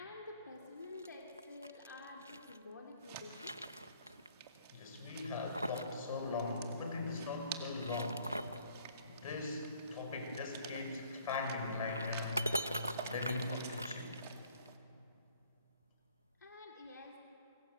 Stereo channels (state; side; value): inverted; both; correlation -0.60